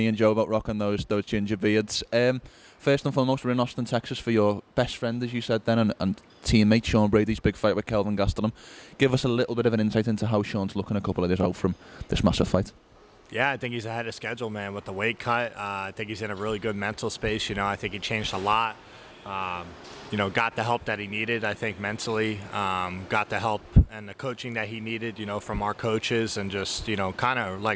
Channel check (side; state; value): both; identical; correlation 1.00